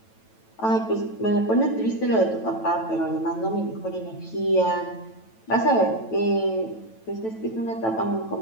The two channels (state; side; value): late; right; 9.1 ms